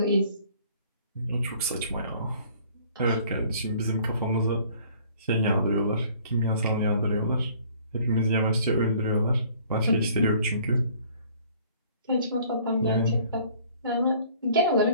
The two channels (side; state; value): both; inverted; correlation -0.55